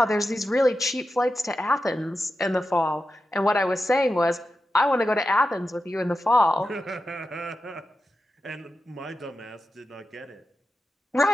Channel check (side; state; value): both; normal; correlation 0.90